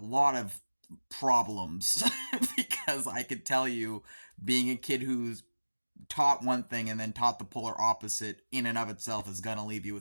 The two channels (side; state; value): both; inverted; correlation -1.00